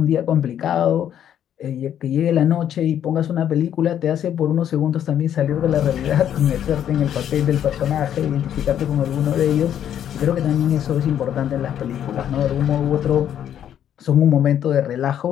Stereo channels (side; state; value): right; quieter; 10.0 dB